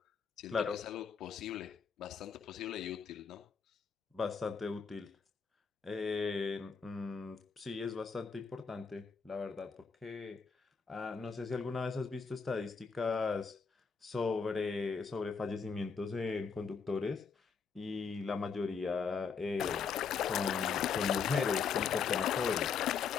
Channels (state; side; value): quieter; right; 5.7 dB